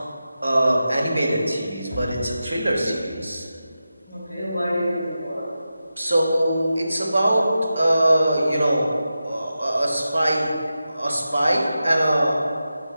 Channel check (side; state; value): both; inverted; correlation -0.91